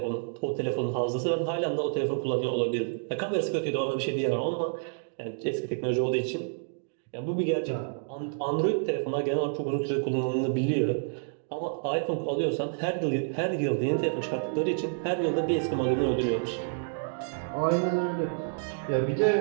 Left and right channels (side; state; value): left; silent; digital silence